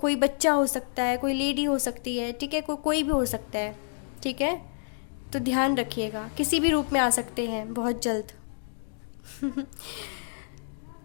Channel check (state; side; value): silent; right; digital silence